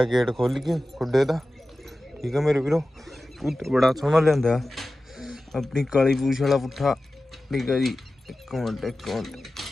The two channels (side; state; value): both; normal; correlation 0.95